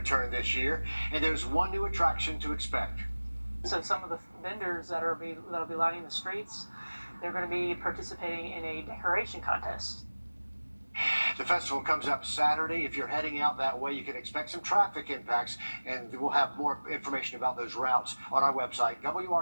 this year, and there's one new attraction to expect. So some of the vendors that'll be lining the streets, they're going to be participating in a decoration contest. The festival comes up Saturday. If you're heading out that way, you can expect some traffic impacts, and we'll have more information about those routes on our website,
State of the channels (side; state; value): both; inverted; correlation -1.00